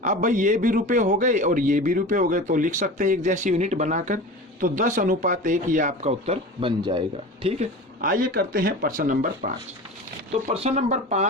अब भाई ये भी रुपए हो गए और ये भी रुपए हो गए, तो लिख सकते हैं एक जैसी यूनिट बनाकर। तो 10 अनुपात 1 ये आपका उत्तर बन जाएगा। ठीक है, आइए करते हैं प्रश्न नंबर 5। तो प्रश्न नंबर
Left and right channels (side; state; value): both; normal; correlation 0.33